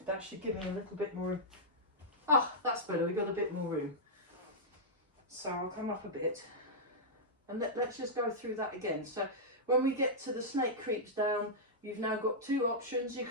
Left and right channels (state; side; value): normal; both; correlation -0.10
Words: that should give me a little bit more. Ah, that's better. We've got a bit more room. So I'll come up a bit. And let's just go through that again. So when we get to the Snake Creeps Down, you've now got two options. You